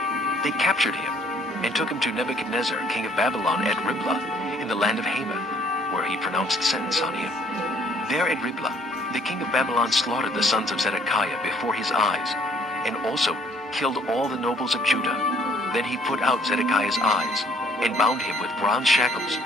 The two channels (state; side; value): normal; both; correlation 0.61